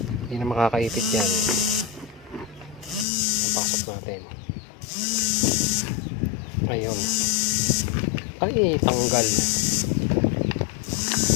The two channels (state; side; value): drops out; right; at 3.1 s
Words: Hindi na makakaipit yan. Ang pasok natin. Ayun. Ay, tanggal.